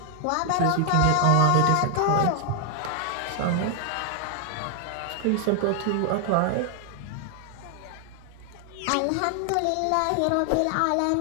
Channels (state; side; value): different; both; correlation 0.00